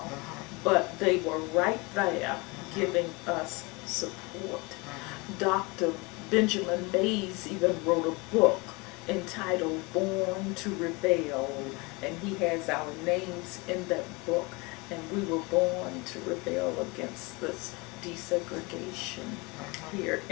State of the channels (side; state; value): right; quieter; 26.7 dB